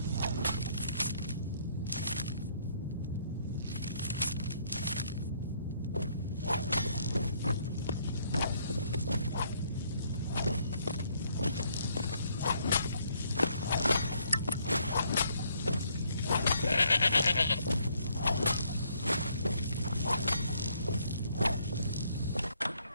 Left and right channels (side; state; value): both; inverted; correlation -0.68